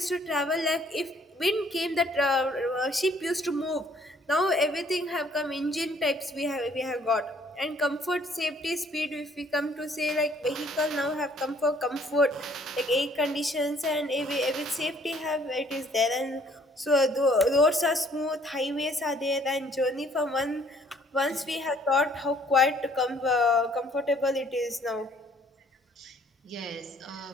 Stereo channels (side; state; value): both; normal; correlation 0.61